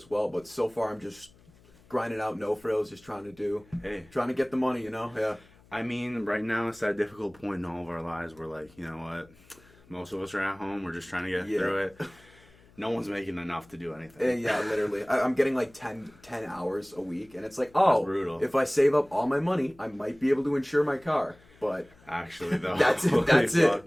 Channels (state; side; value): noise; left; hum, 27 dB below the sound